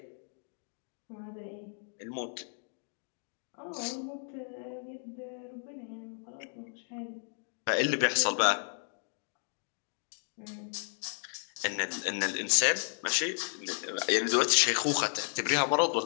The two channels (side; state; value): right; silent; 56 dB below the other